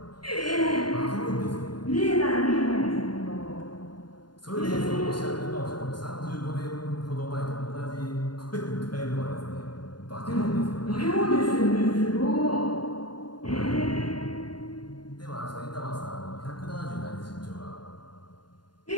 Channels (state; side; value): late; right; 0.71 ms